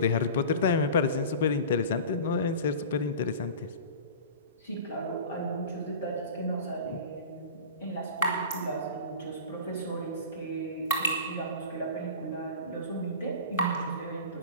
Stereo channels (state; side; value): inverted; both; correlation -0.35